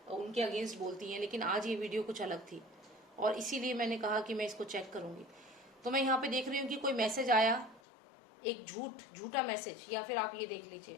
उनके अगेंस्ट बोलती हैं, लेकिन आज ये वीडियो कुछ अलग थी और इसीलिए मैंने कहा कि मैं इसको चेक करूंगी। तो मैं यहाँ पे देख रही हूँ कि कोई मैसेज आया, एक झूठा मैसेज, या फिर आप ये देख लीजिए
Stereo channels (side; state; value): right; drops out; at 7.8 s